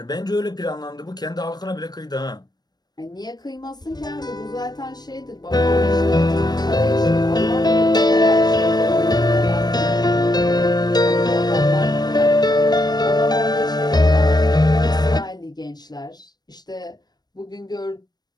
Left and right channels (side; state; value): right; late; 0.19 ms